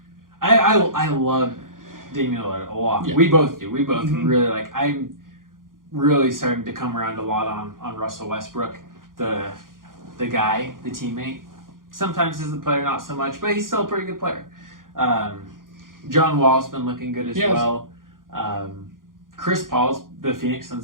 I love Damian Lillard a lot. Yeah. We both do. We both really like. I'm really starting to come around a lot on Russell Westbrook, the guy, the teammate. Sometimes as the player, not so much, but he's still a pretty good player. John Wall's been looking good as well. Chris Paul's, the Phoenix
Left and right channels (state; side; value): late; left; 0.90 ms